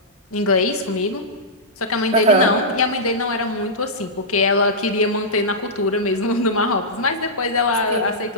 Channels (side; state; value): both; normal; correlation -0.13